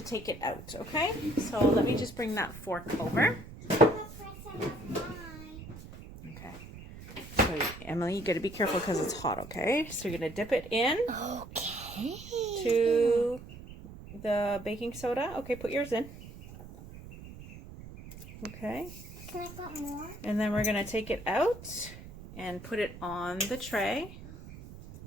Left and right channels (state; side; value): noise; right; rumble, 15 dB below the sound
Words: take it out, okay? So let me just bring that fork over. Okay. So Emily, you got to be careful because it's hot, okay? So you're going to dip it in. Okay. To the baking soda. Okay, put yours in. Okay. Can I put more? And then we're going to take it out and put it on the tray.